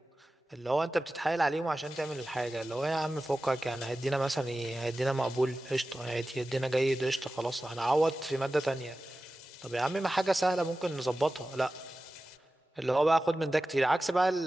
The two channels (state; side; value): normal; both; correlation 0.95